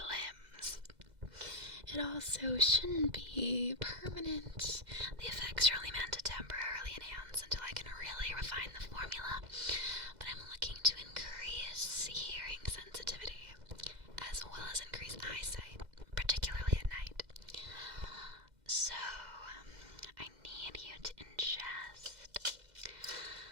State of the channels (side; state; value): left; late; 2.0 ms